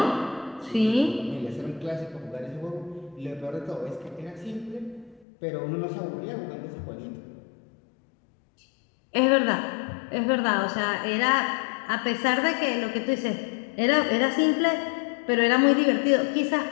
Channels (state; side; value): drops out; right; at 5.2 s